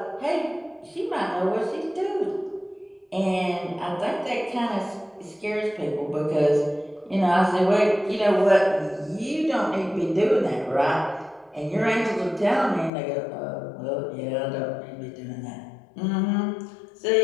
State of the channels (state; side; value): drops out; right; at 12.9 s